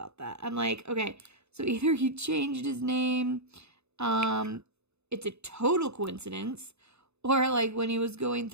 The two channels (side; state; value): left; late; 0.80 ms